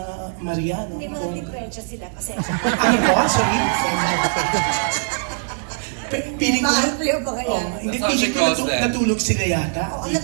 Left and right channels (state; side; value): silent; left; 58 dB below the other